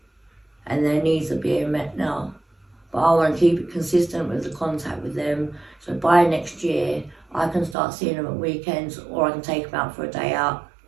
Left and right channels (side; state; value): left; drops out; at 7.8 s